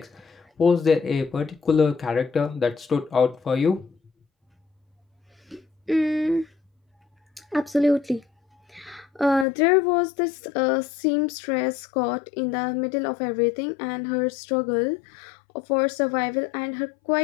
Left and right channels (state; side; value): drops out; right; at 9.5 s